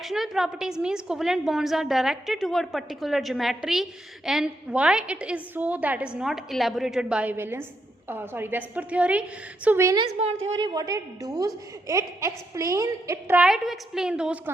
properties means covalent bonds are directed toward particular geometry, and why it is so that is not elaborated by Vesper theory. So valence bond theory, what it does, it try to explain those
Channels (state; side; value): normal; both; correlation 0.80